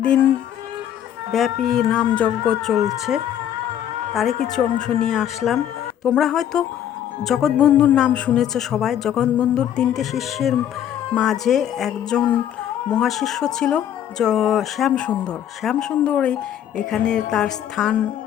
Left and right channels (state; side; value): quieter; right; 10.3 dB